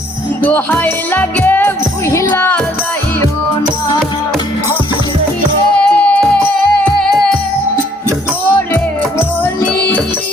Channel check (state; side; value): normal; both; correlation 0.63